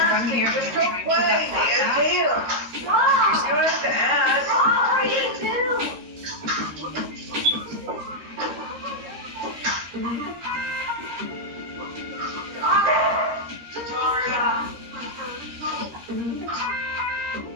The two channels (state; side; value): late; left; 13 ms